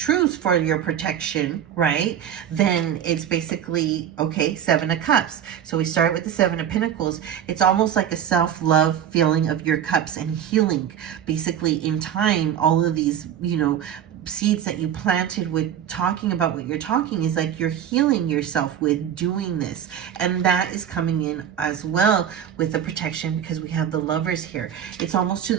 for your protection, right, then it's basically, okay, Seven of Cups. So we start with the Seven of Pentacles. It's almost like a self-love feeling of your cups and healing. Basically, in time, all of these, you know, seeds that you planted with talking about what you're talking is like you're healing yourself with doing this. And that is coming in as well with the protection, because we have the Lovers here. It's almost to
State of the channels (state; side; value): quieter; left; 9.4 dB